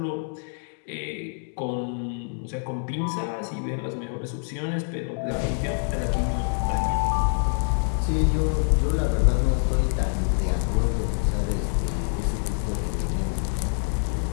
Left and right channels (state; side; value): silent; right; 61 dB below the other